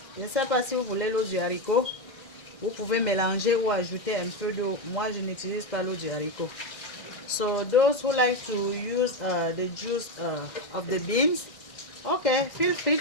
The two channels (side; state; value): right; late; 1.6 ms